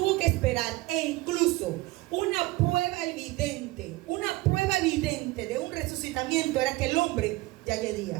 que esperar, e incluso una prueba evidente de un resucitamiento era que el hombre ya yedía.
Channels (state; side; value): quieter; left; 20.5 dB